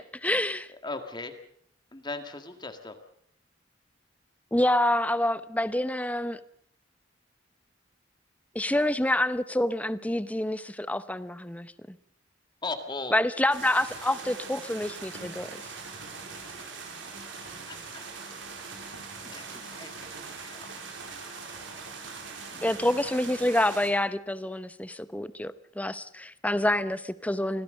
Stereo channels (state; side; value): normal; both; correlation 0.79